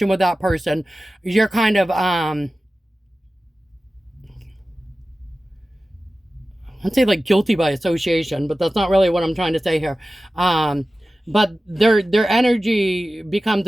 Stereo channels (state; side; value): normal; both; correlation 0.95